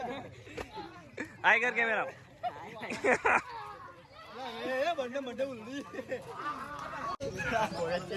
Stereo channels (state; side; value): identical; both; correlation 1.00